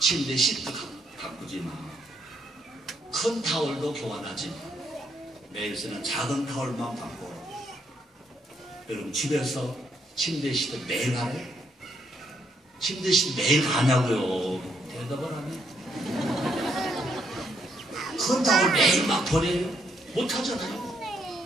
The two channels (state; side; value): normal; both; correlation 0.74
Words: 시트 가꾸지만 큰 타월도 교환하지 마. 매일 쓰는 작은 타월만 바꿔. 여러분 집에서 침대 시트 매일 가요? 침대 시트 매일 가냐고요? 대답을 하네. 큰 타월 매일 막 버려요? 못하잖아요.